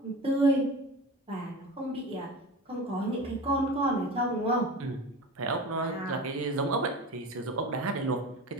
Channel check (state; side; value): normal; both; correlation 0.32